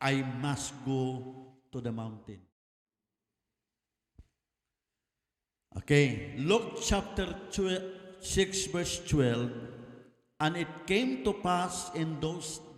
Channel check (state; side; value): identical; both; correlation 1.00